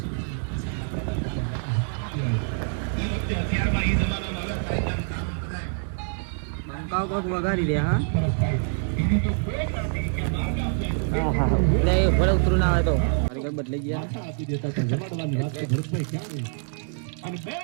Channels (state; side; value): silent; left; 57 dB below the other